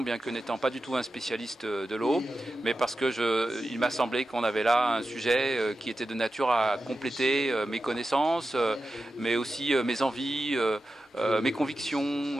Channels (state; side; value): normal; both; correlation 0.92